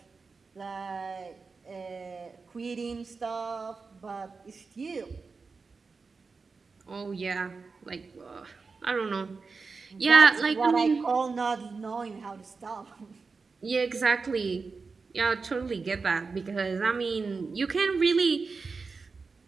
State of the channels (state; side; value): quieter; left; 4.5 dB